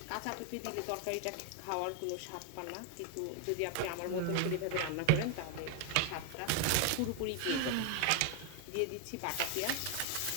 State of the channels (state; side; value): different; both; correlation 0.00